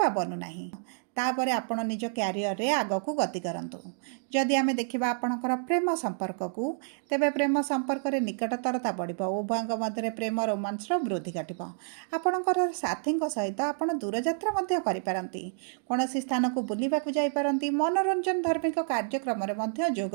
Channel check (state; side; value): silent; left; digital silence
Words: ବନୁନାହିଁ। ତାପରେ ଆପଣ ନିଜ କ୍ୟାରିୟରରେ ଆଗକୁ ଗତି କରନ୍ତୁ। ଯଦି ଆମେ ଦେଖିବା ଆପଣଙ୍କର ପ୍ରେମ ସମ୍ପର୍କକୁ, ତେବେ ପ୍ରେମ ସମ୍ପର୍କରେ ନିକଟତରତା ବଢ଼ିବ। ଉଭୟଙ୍କ ମଧ୍ୟରେ ପ୍ରେମ ରୋମାନ୍ସର ବୃଦ୍ଧି ଘଟିବ। ଆପଣଙ୍କର ସାଥୀଙ୍କ ସହିତ ଆପଣ ଦୂରଯାତ୍ରା ମଧ୍ୟ କରିପାରନ୍ତି। କୌଣସି ସ୍ଥାନକୁ ବୁଲିବାକୁ ଯାଇପାରନ୍ତି। ମନୋରଞ୍ଜନ ଧାର୍ମିକ କାର୍ଯ୍ୟକ୍ରମରେ ମଧ୍ୟ ଯୋଗ